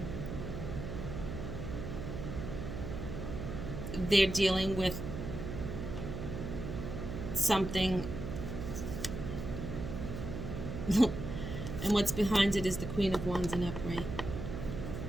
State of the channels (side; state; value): right; noise; hum, 6 dB below the sound